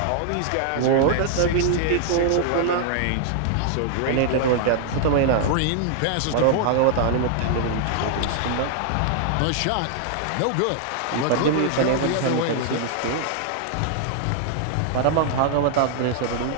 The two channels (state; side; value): different; both; correlation -0.01